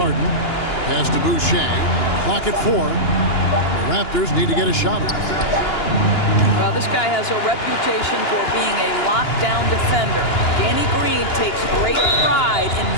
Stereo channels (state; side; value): late; right; 2.9 ms